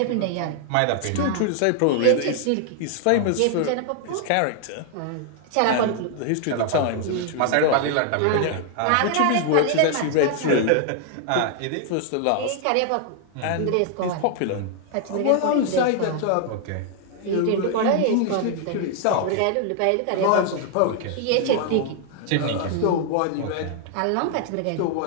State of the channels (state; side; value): different; both; correlation 0.00